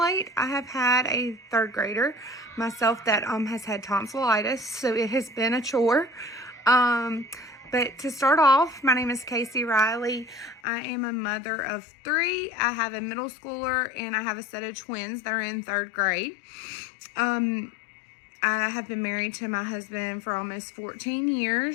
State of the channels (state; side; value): drops out; right; at 10.6 s